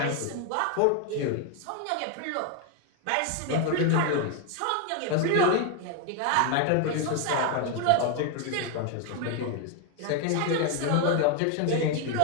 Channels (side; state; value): both; different; correlation 0.01